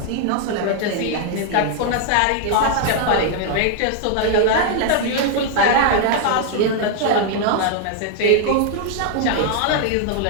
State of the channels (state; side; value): different; both; correlation 0.00